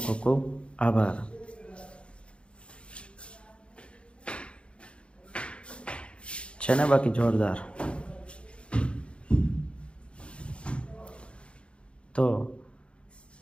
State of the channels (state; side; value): late; right; 0.058 ms